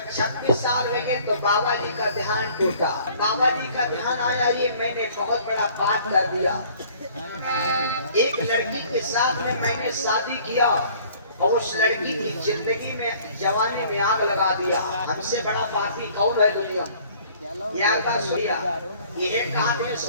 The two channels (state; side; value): inverted; both; correlation -0.54